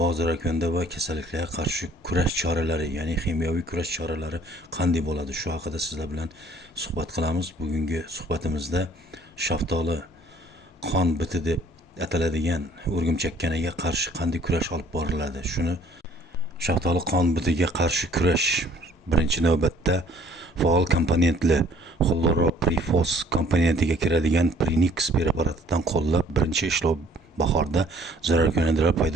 zararkunanda va kasalliklarga qarshi kurash choralari, ya'ni kimyoviy kurash choralari qanday bo'ladi, shu haqida sizlar bilan suhbat qilamiz. Bugungi suhbatimizda shaftoli qon biti deb ataladigan o'rgimchakkanaga qarshi qanday kurash olib boriladi, shuni shaftoli qon bitiga qarshi kurash birinchi navbatda faol komponentli xloroprifos komponentiga kiradigan Prinix preparatidan qo'llab, birinchi ishlov bahorda zararkunandalar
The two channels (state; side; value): normal; both; correlation 0.58